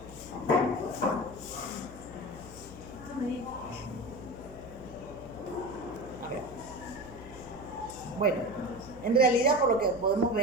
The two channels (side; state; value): left; noise; hum, 16 dB below the sound